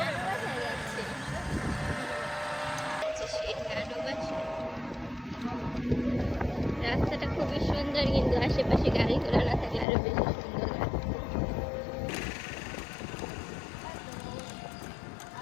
বাসায় যাচ্ছি। সেই নানু বাসায়। রাস্তাটা খুবই সুন্দর, কিন্তু আশেপাশে গাড়ি ঘোড়া না থাকলে আরো বেশি সুন্দর লাগছে।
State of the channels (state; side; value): drops out; right; at 9.9 s